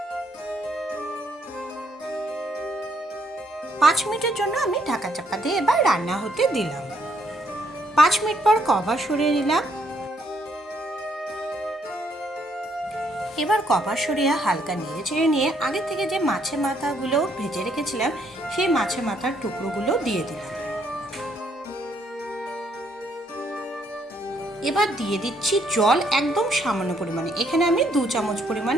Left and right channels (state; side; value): normal; both; correlation 0.70